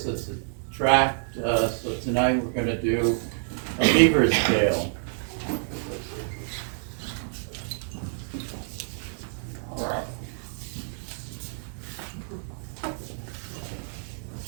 Attract. So tonight we're going to do a Beaver's Tale.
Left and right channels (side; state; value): left; silent; digital silence